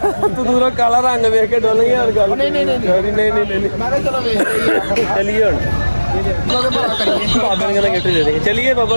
ਤੂੰ ਦੂਰੋਂ ਕਾਲਾ ਰੰਗ ਵੇਖ ਕੇ ਡੋਲ ਗਿਆ ਗੱਲ ਨਹੀਂ ਨਹੀਂ ਨਹੀਂ ਨਹੀਂ ਨਹੀਂ ਮੈਂ ਕਿਹਾ ਚਲੋ ਵੇਖ ਚਲੀਏ ਹੁਣ ਬਾਬਾ ਨੇ ਕਹਿੰਦਾ ਗਿਫਟ ਦੇ ਦੇਗੇ ਚਲੀਏ ਬਾਬਾ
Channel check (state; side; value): inverted; both; correlation -1.00